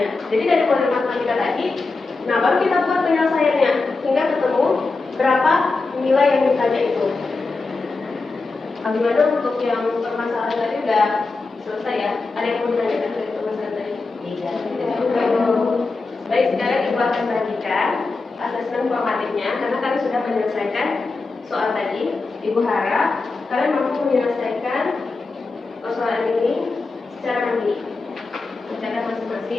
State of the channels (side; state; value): right; quieter; 3.8 dB